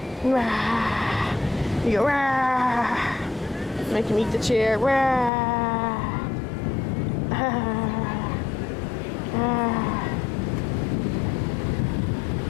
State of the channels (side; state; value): right; drops out; at 5.3 s